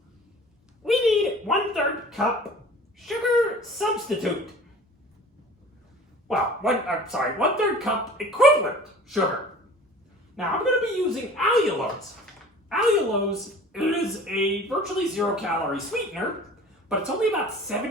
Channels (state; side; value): normal; both; correlation 0.44